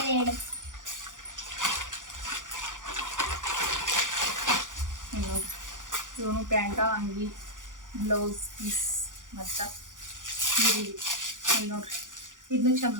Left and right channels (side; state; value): left; late; 0.88 ms